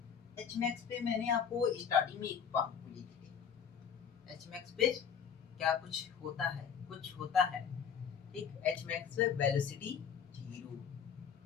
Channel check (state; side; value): quieter; right; 7.4 dB